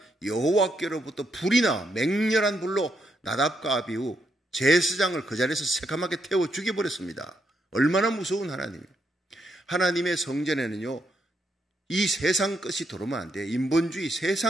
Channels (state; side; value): normal; both; correlation 0.79